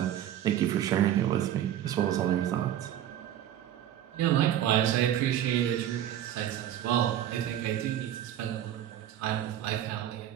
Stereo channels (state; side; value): quieter; left; 11.3 dB